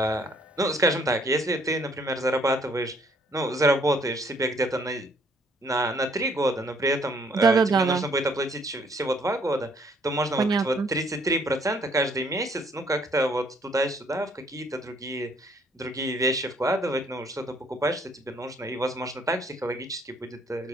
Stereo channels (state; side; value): normal; both; correlation 0.64